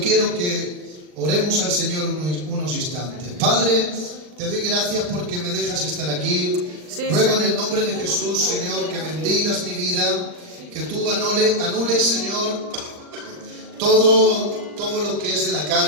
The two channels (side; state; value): left; late; 39 ms